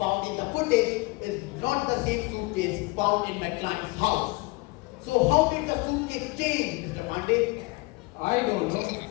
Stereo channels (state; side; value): quieter; right; 25.4 dB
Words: in the footage is not the same suitcase found in my client's house. So how did the suitcase change, Mr. Pandey? I don't know.